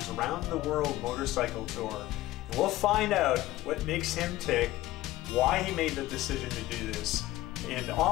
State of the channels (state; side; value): quieter; right; 16.4 dB